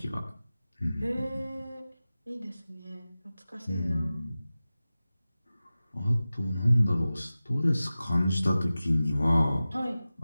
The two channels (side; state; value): both; inverted; correlation -0.96